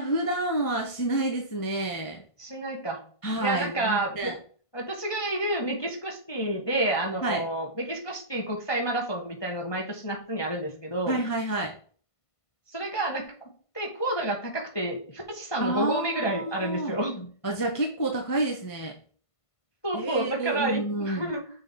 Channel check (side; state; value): right; late; 1.5 ms